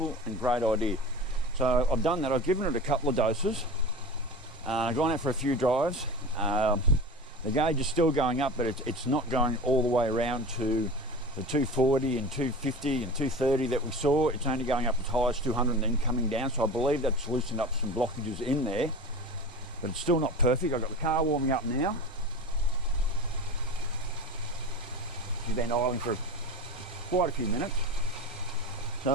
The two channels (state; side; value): normal; both; correlation 0.31